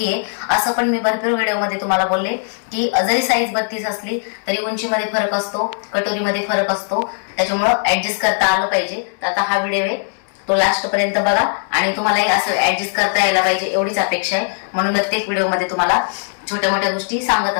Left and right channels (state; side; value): silent; right; 67 dB below the other